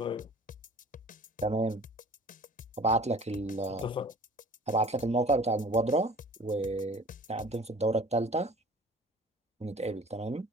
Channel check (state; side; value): normal; both; correlation 0.46